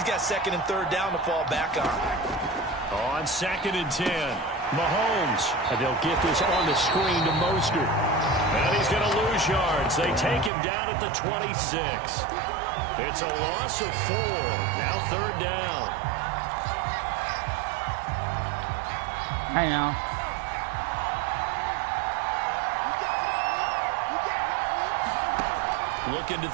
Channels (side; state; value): left; drops out; at 10.5 s